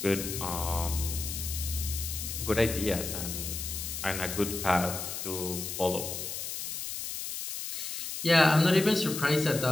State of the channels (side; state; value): left; noise; hiss, 5 dB below the sound